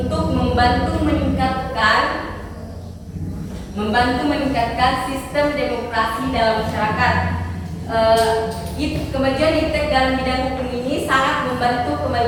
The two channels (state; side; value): identical; both; correlation 1.00